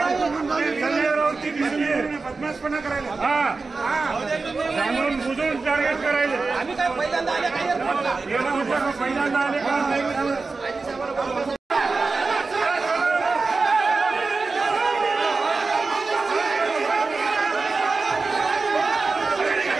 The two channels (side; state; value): left; quieter; 4.0 dB